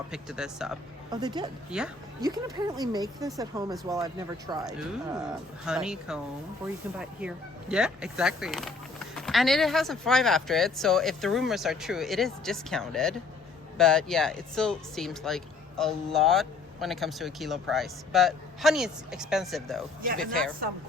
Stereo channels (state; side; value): quieter; right; 4.0 dB